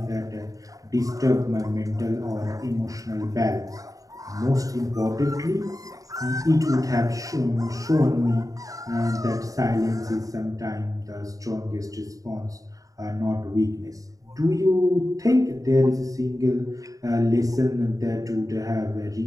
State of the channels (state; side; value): late; left; 0.17 ms